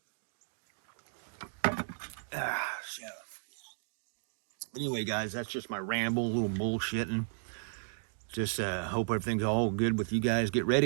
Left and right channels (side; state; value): left; silent; digital silence